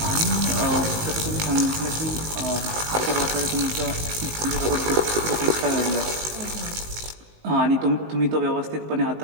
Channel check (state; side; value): late; left; 19 ms